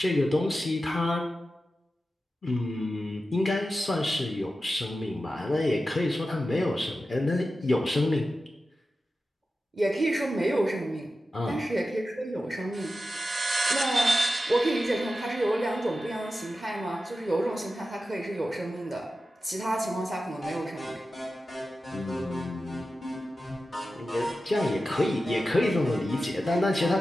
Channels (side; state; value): both; normal; correlation 0.93